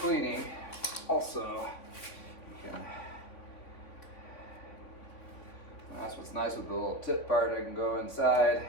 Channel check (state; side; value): late; right; 3.5 ms